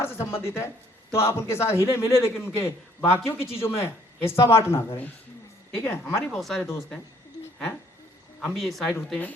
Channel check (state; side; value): normal; both; correlation 0.63